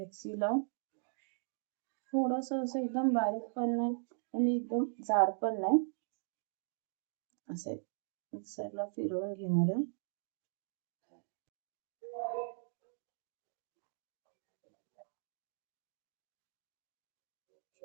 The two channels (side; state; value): left; silent; digital silence